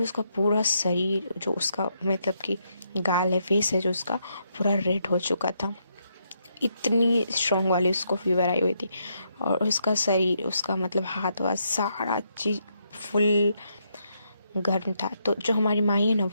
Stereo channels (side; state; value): both; inverted; correlation -0.77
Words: उसका पूरा शरीर जो उसका मतलब कि गाल है, फेस है जो उसका पूरा रेड हो चुका था, इतनी स्ट्रॉन्ग वाली उसको फीवर आई हुई थी। और उसका शरीर उसका मतलब हाथ वाथ सारा चीज फुल गर्म था। तो जो हमारी माई है ना